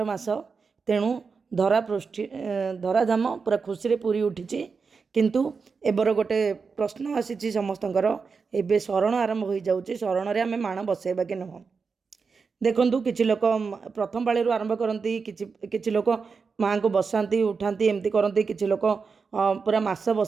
मास। तेणु धरा पृष्ठि धराधाम पूरा खुशी पूरी उठी। किंतु एबर गोटे प्रश्न आसी समस्तଙ୍କର एबे शरण आरंभ हो जाऊँगी। शरण रे आमे माण बसैबा कि नुह। देखु किसी लोक प्रथम पाळी आरंभ करती, किसी लोक माँ को बसाती उठाती एमती करती, किसी लोक पूरा मास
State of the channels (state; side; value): quieter; left; 5.1 dB